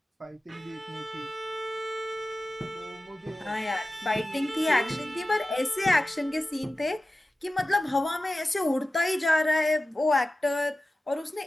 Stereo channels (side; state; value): both; normal; correlation 0.95